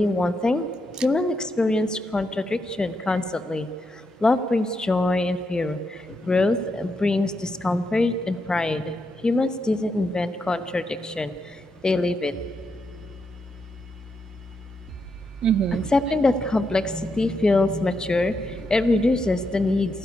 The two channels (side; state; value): both; normal; correlation 0.82